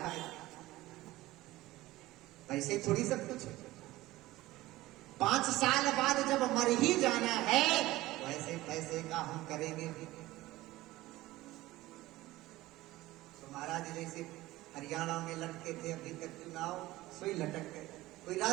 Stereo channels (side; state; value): left; quieter; 17.7 dB